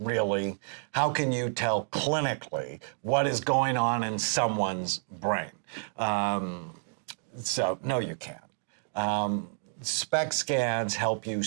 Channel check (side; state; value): left; silent; digital silence